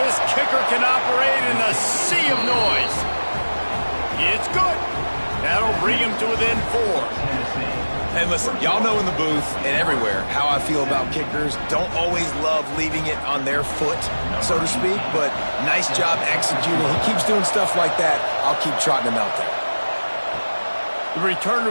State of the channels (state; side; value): inverted; both; correlation -1.00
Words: kicker can operate in a sea of noise. It's good. That'll bring him to within 4. And listen, y'all know in the booth and everywhere how I feel about kickers. Don't always love leaving it on their foot, so to speak, but nice job executing. He keeps doing stuff like that. I'll keep trotting him out there. The